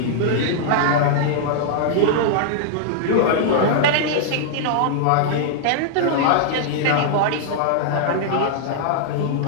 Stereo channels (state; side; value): different; both; correlation -0.01